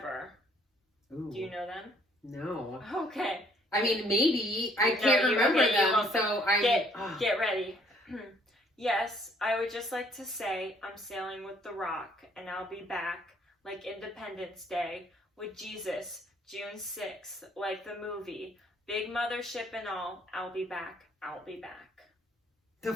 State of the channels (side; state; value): both; normal; correlation 0.63